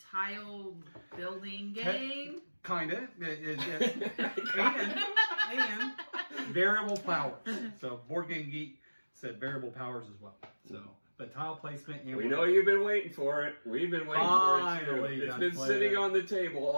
building game. Kinda. And variable powers. So Board Game Geek said variable powers as well. So, but tile placement. And we know you've been waiting for it. We've been waiting for it too. It's been sitting on the table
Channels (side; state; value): both; inverted; correlation -1.00